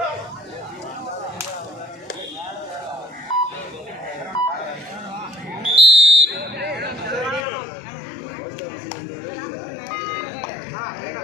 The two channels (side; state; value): right; drops out; at 7.5 s